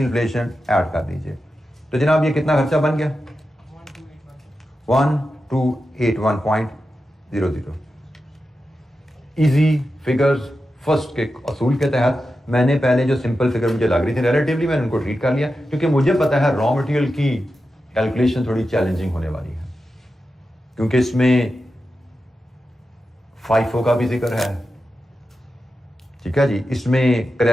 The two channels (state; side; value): normal; both; correlation 0.91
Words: ऐड कर दीजिए। तो जनाब ये कितना खर्चा बन गया? 1281.00। इजी फिगर्स फर्स्ट के असूल के तहत मैंने पहले जो सिंपल फिगर मुझे लग रही थी रिलेटिवली मैंने उनको ट्रीट कर लिया, क्योंकि मुझे पता है रॉ मटेरियल की कैलकुलेशन थोड़ी चैलेंजिंग होने वाली है, क्योंकि इसमें FIFO का भी जिक्र है, ठीक है जी, इसमें